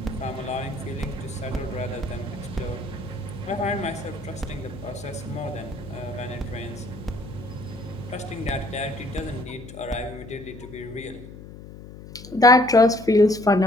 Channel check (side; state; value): left; noise; hum, 15 dB below the sound